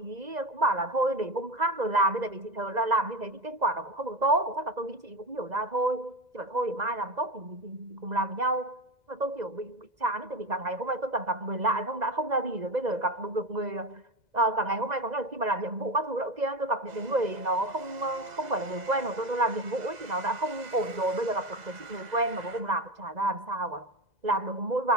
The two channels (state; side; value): late; left; 2.0 ms